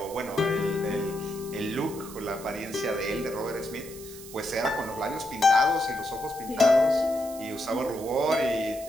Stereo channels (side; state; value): right; noise; hiss, 16 dB below the sound